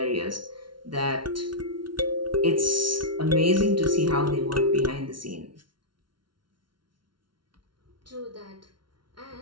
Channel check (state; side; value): late; left; 0.72 ms